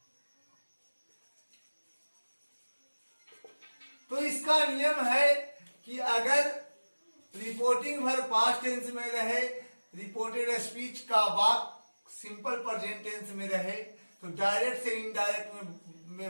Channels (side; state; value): both; inverted; correlation -1.00